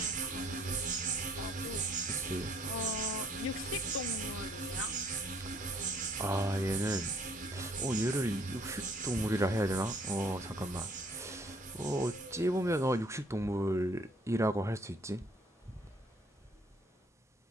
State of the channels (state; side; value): normal; both; correlation 0.62